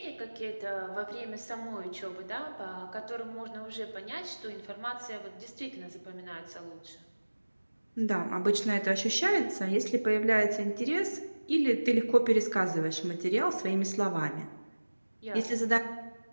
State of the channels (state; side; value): inverted; both; correlation -1.00